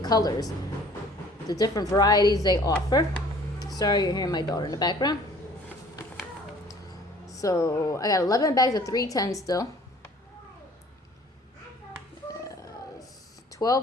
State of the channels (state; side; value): normal; both; correlation 0.53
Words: colors, the different varieties they offer. Sorry, you're hearing my daughter in the background. So I got 11 bags of 310 still.